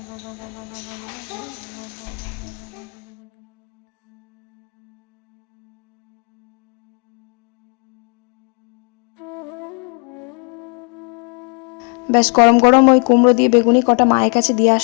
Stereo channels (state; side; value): quieter; right; 37.8 dB